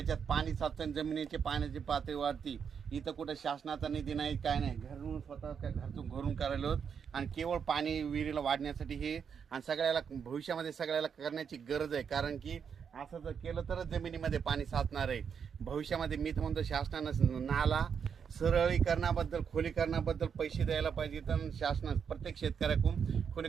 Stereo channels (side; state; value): left; quieter; 7.0 dB